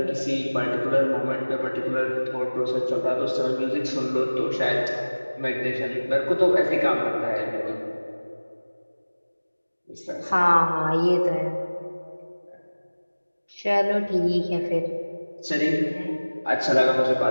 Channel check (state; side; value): inverted; both; correlation -1.00